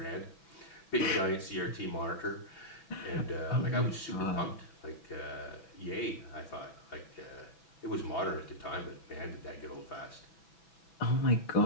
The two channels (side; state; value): right; late; 6.1 ms